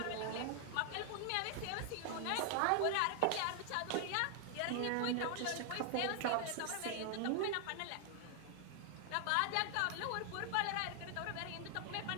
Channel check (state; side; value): different; both; correlation 0.00